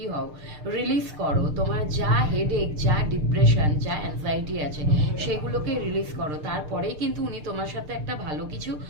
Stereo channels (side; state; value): left; late; 6.7 ms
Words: হও, রিলিজ করো, তোমার যা হেডেক, যা ডিপ্রেশন, যা অ্যাংজাইটি আছে সেগুলোকে রিলিজ করো, তারপরেই কিন্তু উনি তোমার সাথে একটা ভালো কিছু